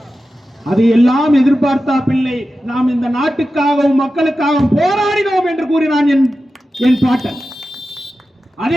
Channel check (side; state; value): both; normal; correlation 0.93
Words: அது எல்லாம் எதிர்பார்த்தா பிள்ளை, நாம் இந்த நாட்டுக்காகவும் மக்களுக்காகவும் போராடினோம் என்று கூறினான் என் பாட்டன்.